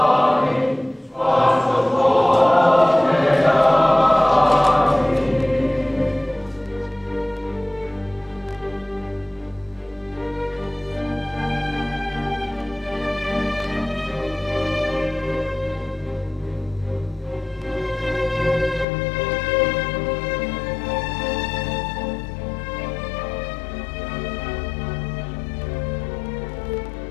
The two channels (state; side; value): drops out; right; at 18.9 s